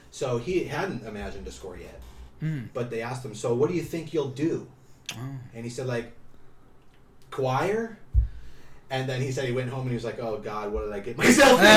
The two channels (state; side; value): identical; both; correlation 1.00